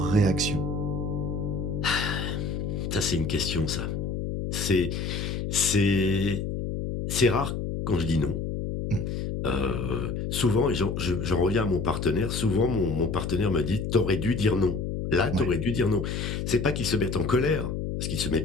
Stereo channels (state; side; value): noise; left; hum, 3 dB below the sound